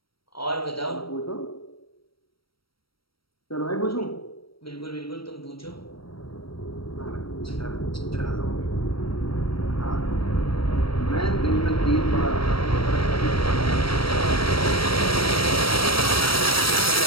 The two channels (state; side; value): late; right; 0.75 ms